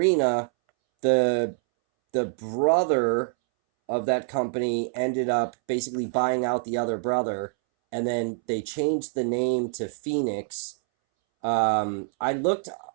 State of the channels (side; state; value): left; silent; 61 dB below the other